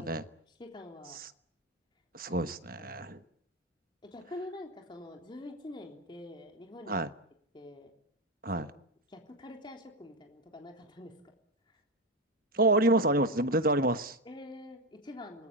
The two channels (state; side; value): normal; both; correlation 0.13